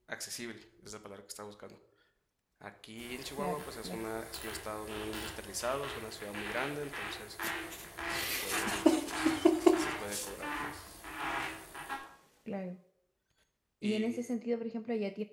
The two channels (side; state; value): both; identical; correlation 1.00